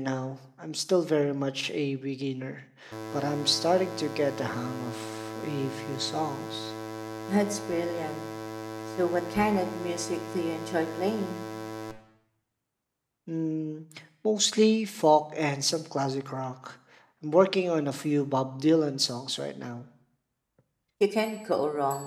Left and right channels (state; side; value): identical; both; correlation 1.00